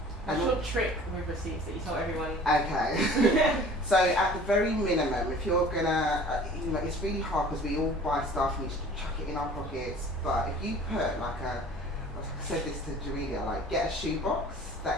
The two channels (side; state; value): both; normal; correlation 0.47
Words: What's your trick with receipts that you tell everyone? Okay. So at the very minimum, if you're gonna, you know, it's really hard because we all buy stuff and you just chuck it in our pockets. But if you put like I said this to Jamelia, like get a shoebox